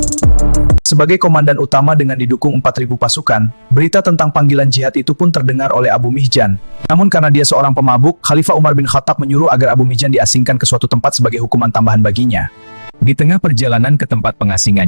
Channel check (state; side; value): inverted; both; correlation -1.00